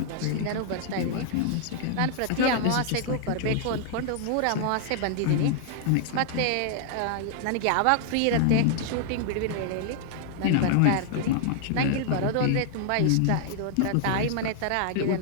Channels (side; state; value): both; different; correlation -0.01